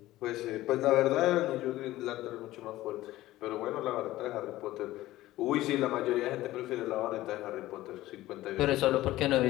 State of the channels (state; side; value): quieter; right; 16.2 dB